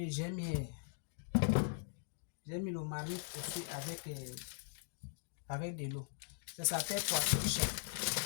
J'ai mis le marmite au feu avec de l'eau. Ça s'appelle poisson cher.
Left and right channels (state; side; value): silent; right; digital silence